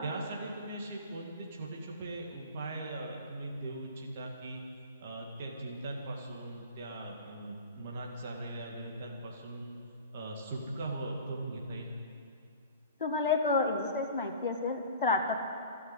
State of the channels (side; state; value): both; inverted; correlation -0.40